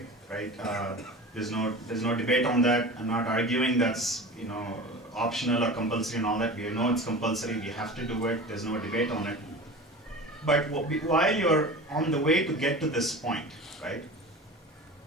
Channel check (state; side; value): normal; both; correlation 0.34